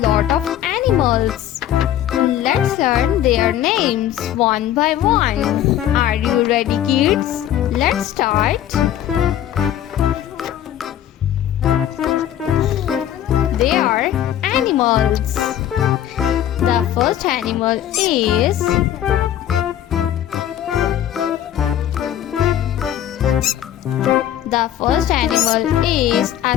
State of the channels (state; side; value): quieter; right; 11.4 dB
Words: of animals. Let's learn their names one by one. Are you ready, kids? Let's start. They are animals. The first animal is a